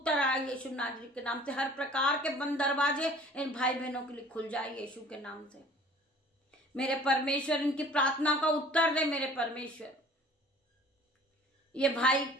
आए यीशु नाजरी के नाम से। हर प्रकार के बंद दरवाजे इन भाई बहनों के लिए खुल जाए यीशु के नाम से। मेरे परमेश्वर इनकी प्रार्थना का उत्तर दे मेरे परमेश्वर। ये भाई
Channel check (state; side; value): normal; both; correlation 0.50